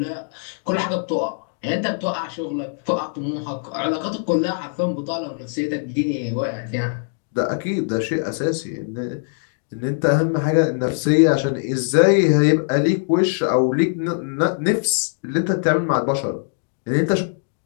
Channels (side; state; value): right; silent; digital silence